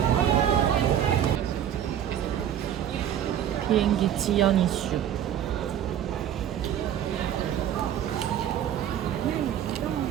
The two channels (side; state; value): left; quieter; 10.2 dB